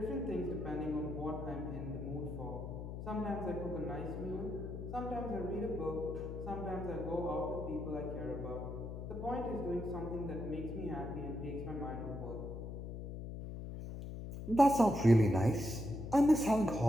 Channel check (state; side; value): noise; left; hum, 7 dB below the sound